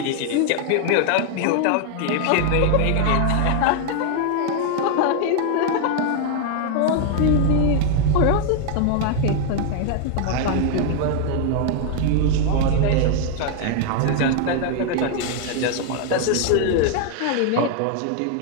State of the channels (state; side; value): different; both; correlation 0.00